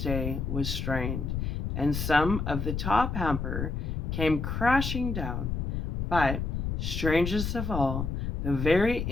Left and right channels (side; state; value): left; noise; rumble, 2 dB below the sound